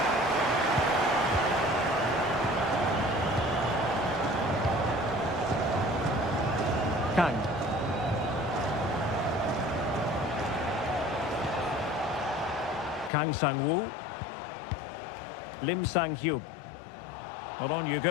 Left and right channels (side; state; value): right; drops out; at 13.1 s